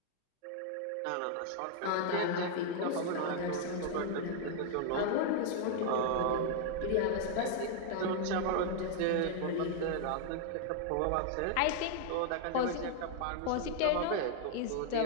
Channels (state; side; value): different; both; correlation -0.01